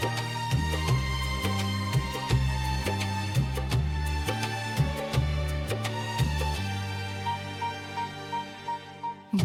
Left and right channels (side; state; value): both; identical; correlation 1.00